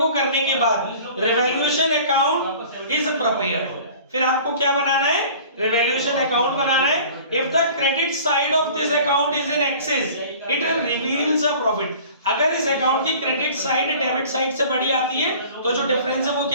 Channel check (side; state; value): both; inverted; correlation -0.45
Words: करने के बाद रिवैल्यूएशन अकाउंट इज प्रिपेयर्ड। फिर आपको क्या बनाना है, रिवैल्यूएशन अकाउंट बनाना है। If the credit side of this account is in excess it reveals a profit. अगर इस अकाउंट की क्रेडिट साइड डेबिट साइड से बड़ी आती है तो जो डिफरेंस है वो